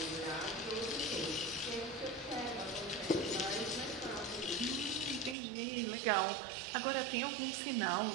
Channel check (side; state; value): left; drops out; at 5.4 s